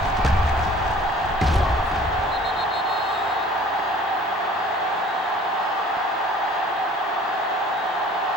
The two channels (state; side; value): normal; both; correlation 0.49